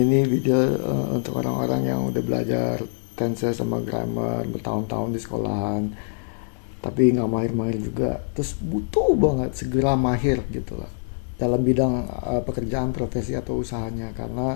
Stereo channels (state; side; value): silent; right; 62 dB below the other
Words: video untuk orang-orang yang udah belajar tenses sama grammar bertahun-tahun di sekolahan, tapi nggak mahir-mahir juga. Terus butuh banget segera mahir gitu lah dalam bidang pekerjaan, profesi atau usahanya,